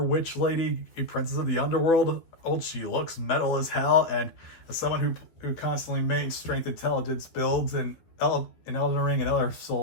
witch lady, a princess of the underworld. She looks metal as hell, and as someone who constantly mains strength intelligence builds in Elden Ring and other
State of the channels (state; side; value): late; right; 12 ms